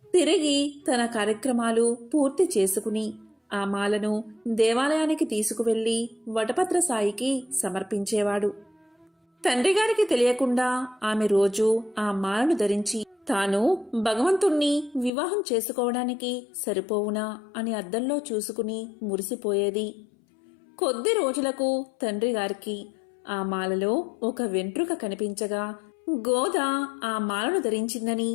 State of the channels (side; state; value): right; drops out; at 15.1 s